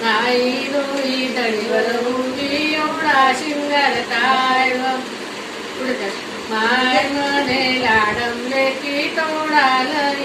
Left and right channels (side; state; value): both; identical; correlation 1.00